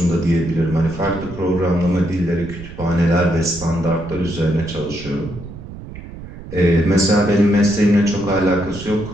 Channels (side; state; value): right; noise; rumble, 13 dB below the sound